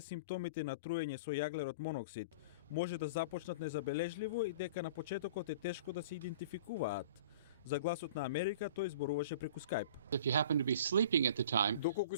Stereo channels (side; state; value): both; inverted; correlation -0.43